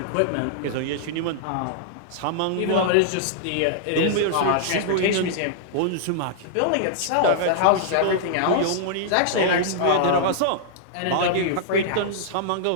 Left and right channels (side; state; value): both; different; correlation -0.01